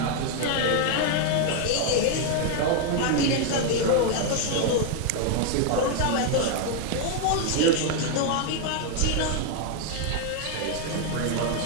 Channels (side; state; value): both; different; correlation 0.00